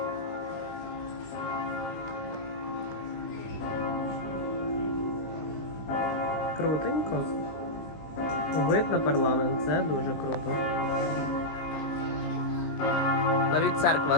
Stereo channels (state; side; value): late; right; 19 ms